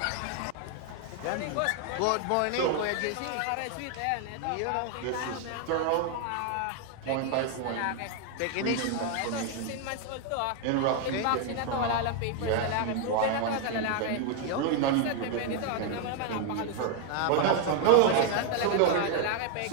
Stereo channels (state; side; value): different; both; correlation 0.00